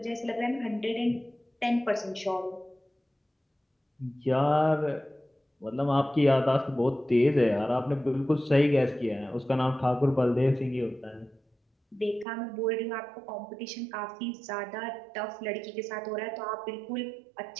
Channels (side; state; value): left; drops out; at 12.2 s